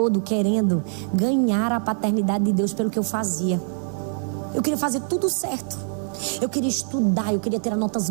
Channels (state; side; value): silent; left; 63 dB below the other